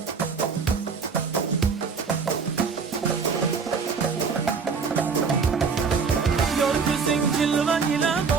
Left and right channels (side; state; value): left; quieter; 5.4 dB